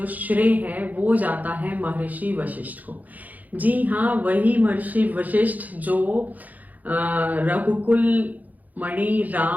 श्रेय है वो जाता है महर्षि वशिष्ठ को। जी हाँ, वही महर्षि वशिष्ठ जो रघुकुल मणि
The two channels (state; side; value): late; left; 0.080 ms